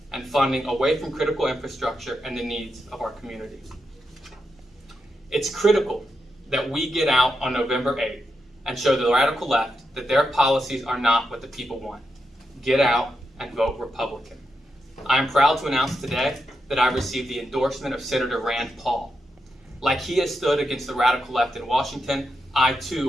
and funding away from critical infrastructure and the needs of our communities. It's critical that we get out on November 8th and show the radical left that their policies are not what the people want. Get out and vote Republican. I am proud to announce today that I received the endorsement of Senator Rand Paul. Like he has stood against the radical left in Washington, I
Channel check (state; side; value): normal; both; correlation 0.85